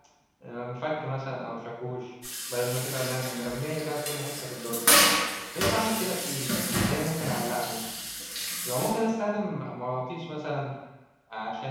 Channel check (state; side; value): identical; both; correlation 1.00